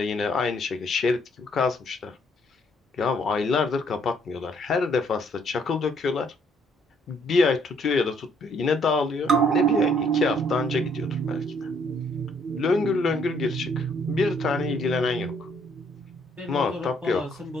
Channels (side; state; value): both; normal; correlation 0.67